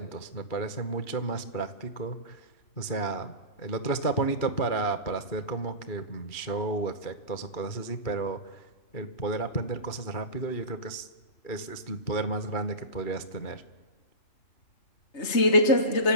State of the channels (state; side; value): late; right; 2.4 ms